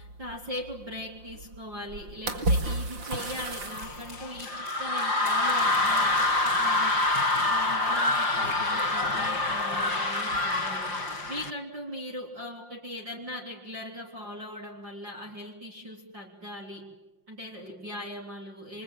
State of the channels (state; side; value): late; left; 5.6 ms